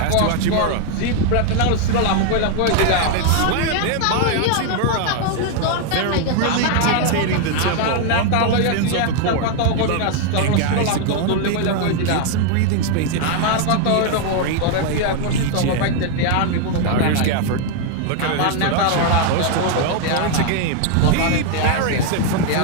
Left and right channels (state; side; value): different; both; correlation 0.00